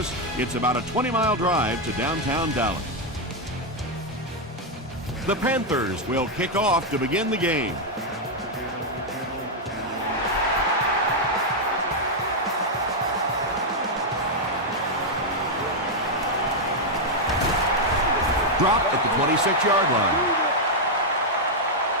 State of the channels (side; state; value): both; normal; correlation 0.00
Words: It's about a 20-mile drive to downtown Dallas. The Panthers will kick off to begin the game. Dropped at the 26-yard line.